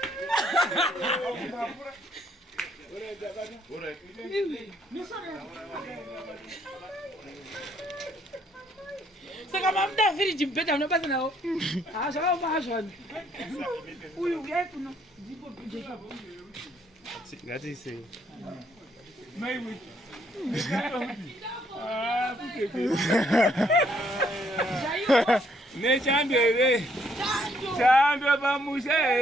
Saka mamda finish mpeta unapata nao. Saka mahashwan. Uyu kuno ndipo pijeka. Ngati ise. Maiwe. Nechandwere chandwe pamusha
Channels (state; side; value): normal; both; correlation 0.69